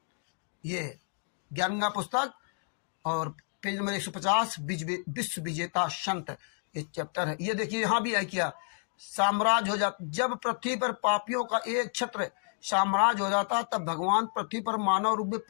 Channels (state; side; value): silent; right; 58 dB below the other